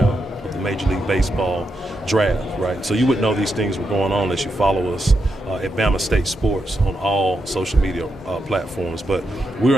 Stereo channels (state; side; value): normal; both; correlation 0.84